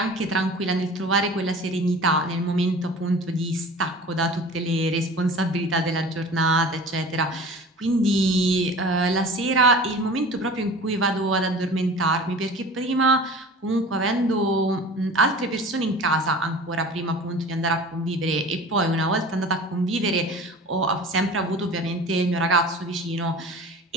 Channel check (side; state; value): both; normal; correlation 0.40